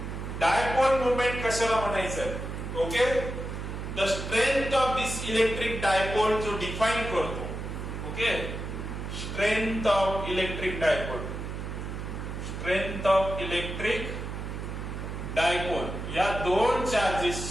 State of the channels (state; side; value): noise; right; hum, 6 dB below the sound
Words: dipole moment कशाला म्हणायचं? Okay, the strength of this electric dipole जो डिफाइन करतो. Okay, strength of electric dipole, strength of electric dipole, या दोन